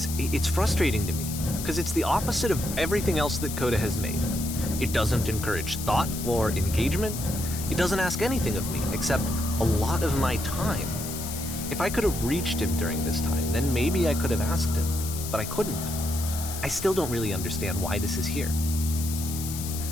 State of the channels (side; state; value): left; noise; hiss, 8 dB below the sound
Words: it's frustrating to me, because it's the opposite of everything else that Coda has made. It doesn't encourage thought or engagement. It doesn't ask anything of me, except a lot of my time. If I could have reached him during this time, then maybe I could have asked him, but I couldn't. I still don't really understand why this is here.